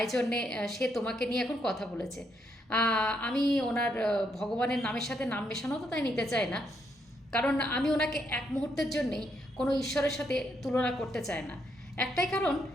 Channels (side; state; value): both; normal; correlation 0.76